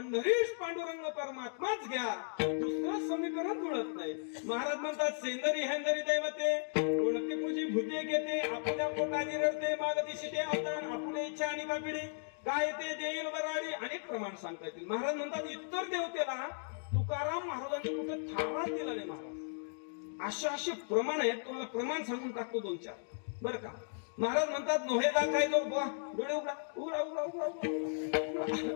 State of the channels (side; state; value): right; silent; digital silence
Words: पांडुरंग परमात्माच घ्या, दुसरं समीकरण जुळत नाही. महाराज म्हणतात सेंदरी हेंदरी दैवते, कोणती पूजी भूते घेते, आपल्या पोटाने रडते, मागदिशी ते अवतार, आपले इच्छा आणि कापिडी, काय ते देईल वराडी. अनेक प्रमाण सांगता येतील. महाराज म्हणतात इतर देवतेला तुकाराम महाराजांनी कुठे थाराच दिला नाही. महाराज असे प्रमाण आहेत. तुम्हाला प्रमाण सांगून टाकतो 2-4 बरं का. महाराज म्हणतात नोहेदा काय जो डोळे उघडा उघडा उघडा उघडा